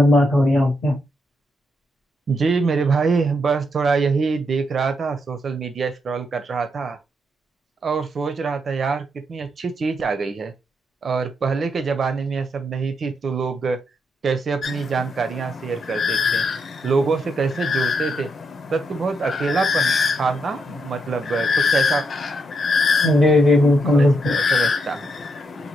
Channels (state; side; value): normal; both; correlation 0.79